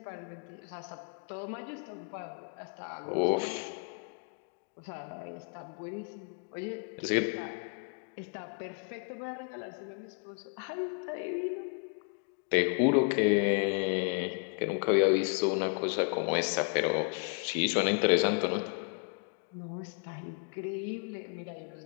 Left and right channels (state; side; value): quieter; right; 39.5 dB